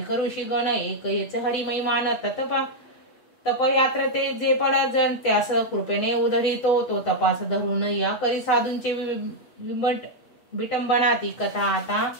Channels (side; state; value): right; late; 8.3 ms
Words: करुषी गण, एक येच हरिमय मान, तपयात्र ते जे पड जन त्यास कृपेने उधरितो, तो तपास धरून या करी साधूंचे विटंबना, ती कथा आता